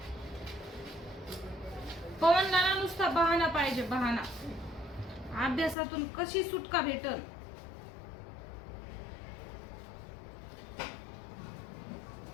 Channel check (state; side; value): drops out; right; at 5.8 s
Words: पवनला ना नुसता बहाना पाहिजे, बहाना. अभ्यासातून कशी सुटका भेटल.